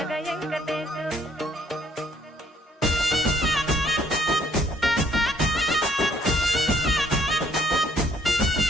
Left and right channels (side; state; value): both; normal; correlation 0.63